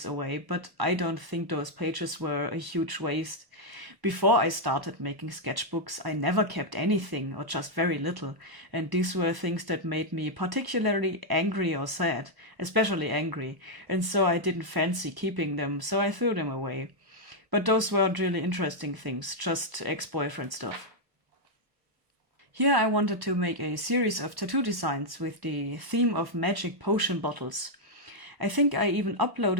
away, but I don't think those pages were a huge waste. Before I started making sketchbooks, I never kept anything or just very little, and these were things that made me particularly angry or sad, especially angry, and so I didn't fancy keeping them, so I threw them away. But those weren't really interesting things, just ex-boyfriend stuff. Here I wanted to make a series of tattoo designs with the theme of magic potion bottles. I think I even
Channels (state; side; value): late; left; 1.0 ms